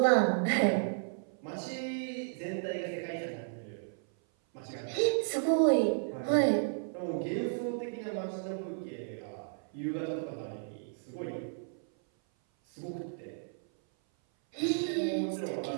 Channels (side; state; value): left; silent; 56 dB below the other